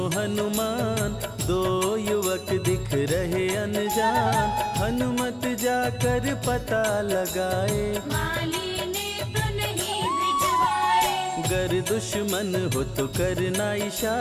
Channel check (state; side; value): identical; both; correlation 1.00